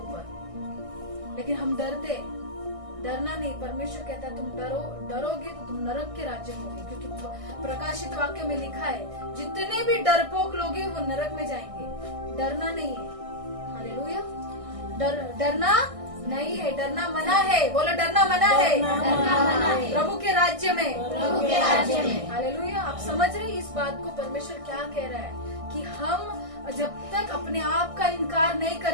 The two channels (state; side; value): late; left; 1.6 ms